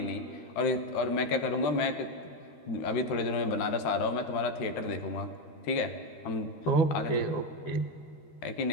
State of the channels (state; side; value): late; right; 13 ms